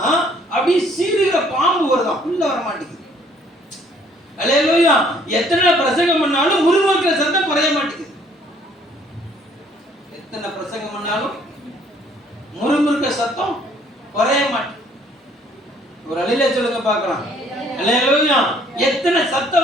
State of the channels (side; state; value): both; normal; correlation 0.61